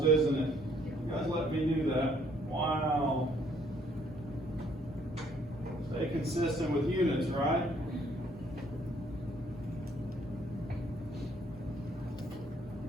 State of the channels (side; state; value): both; normal; correlation 0.64